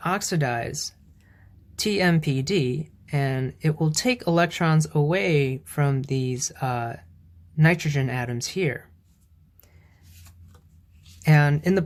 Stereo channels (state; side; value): identical; both; correlation 1.00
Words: oxidize TMPD, and it will take electrons away from these nitrogen atoms here. And in the